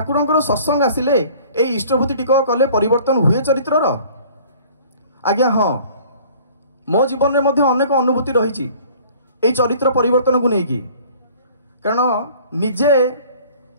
सत्संग आसिले ये इष्टभूति टिक कले परिवर्तन हुए चरित्रर आज्ञा हाँ मो जीवन में मध्य अनेक अनुभूति रही चरित्र परिवर्तन को लेकिन कारण निजे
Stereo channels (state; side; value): inverted; both; correlation -0.50